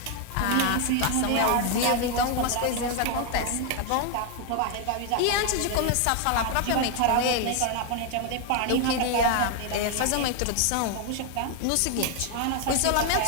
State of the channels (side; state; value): both; different; correlation 0.01